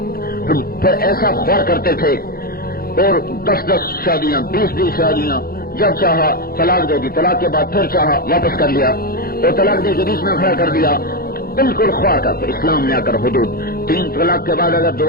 پھر ایسا خوار کرتے تھے اور 10 شادیاں، 20 شادیاں، جب چاہا طلاق دے دی، طلاق کے بعد پھر چاہا واپس کر لیا اور طلاق دے کے بیچ میں کھڑا کر دیا، بالکل خوار کرتے. اسلام نے آ کر حدود 3 طلاق کے بعد اگر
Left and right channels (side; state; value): right; late; 0.44 ms